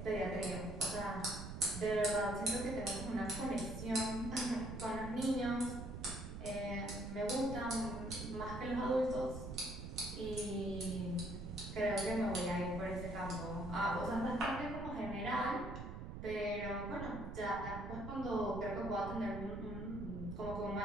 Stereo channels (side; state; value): right; noise; rumble, 7 dB below the sound